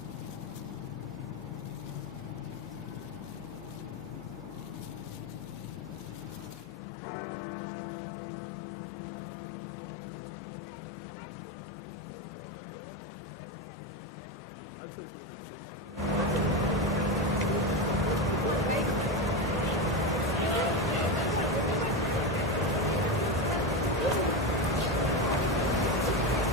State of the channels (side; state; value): both; normal; correlation 0.14